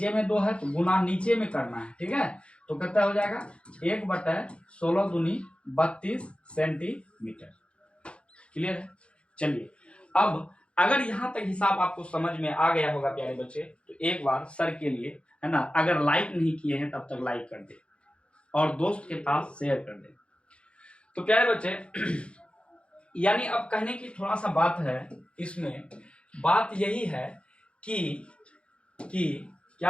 में 2 है तो गुना नीचे में करना है, ठीक है। तो कितना हो जाएगा 1/16 दूनी 32 सेंटीमीटर। क्लियर है। चलिए अब अगर यहाँ तक हिसाब आपको समझ में आ गया होगा प्यारे बच्चे, तो एक बार सर के लिए, है ना, अगर लाइक नहीं किए हैं तब तक लाइक कर दे और दोस्त के पास शेयर कर दे। तो प्यारे बच्चे यानी अब कहने की थोड़ा सा बात है इसमें, बात यही है कि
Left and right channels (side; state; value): right; late; 0.058 ms